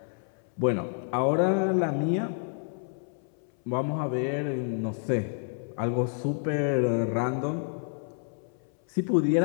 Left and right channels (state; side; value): silent; right; 59 dB below the other